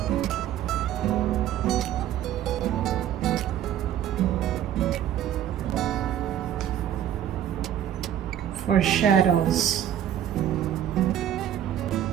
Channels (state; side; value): quieter; left; 10.9 dB